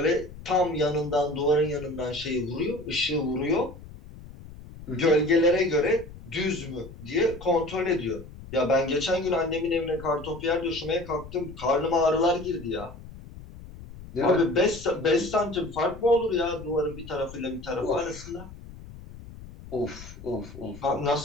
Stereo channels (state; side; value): noise; left; rumble, 16 dB below the sound